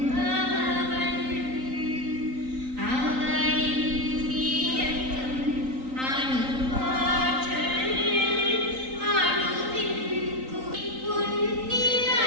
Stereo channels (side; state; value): left; late; 3.8 ms